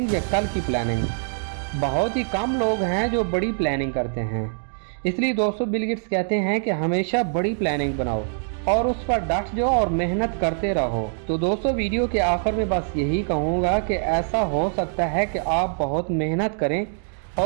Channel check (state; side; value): silent; left; digital silence